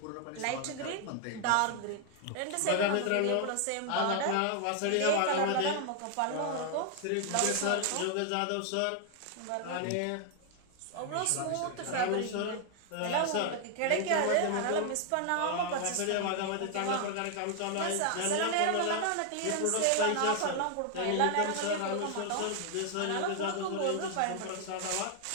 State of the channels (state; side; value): different; both; correlation 0.00